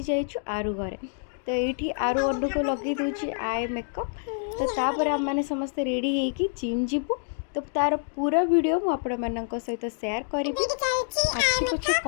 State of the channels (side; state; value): right; silent; digital silence